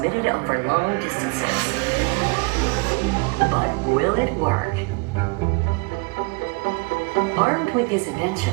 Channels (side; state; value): left; quieter; 30.3 dB